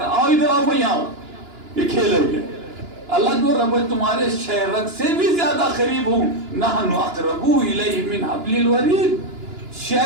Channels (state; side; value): late; left; 2.9 ms